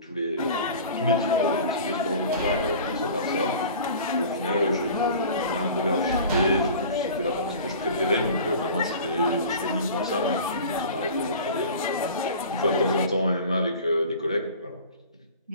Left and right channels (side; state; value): both; inverted; correlation -0.40